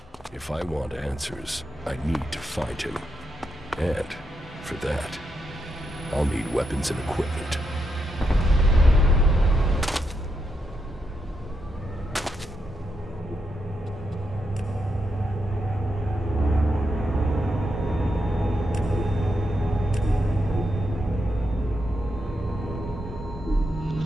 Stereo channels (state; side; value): normal; both; correlation 0.83